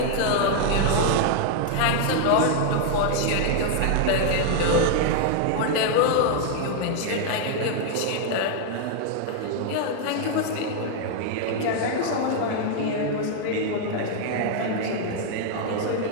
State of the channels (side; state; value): both; different; correlation 0.00